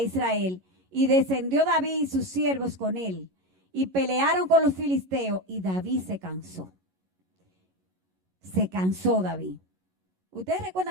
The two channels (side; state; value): left; late; 11 ms